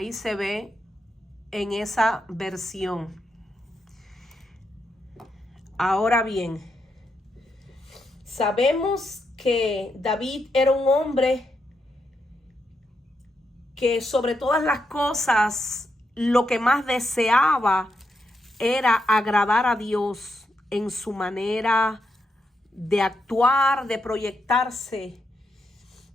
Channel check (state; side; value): normal; both; correlation 0.82